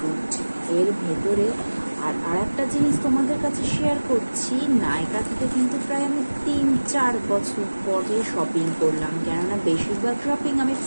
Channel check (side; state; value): both; inverted; correlation -1.00